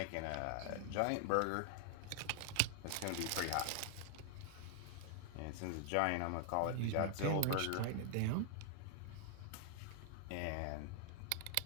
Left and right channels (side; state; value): both; different; correlation 0.00